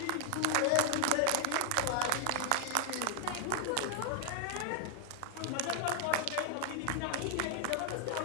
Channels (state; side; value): different; both; correlation 0.00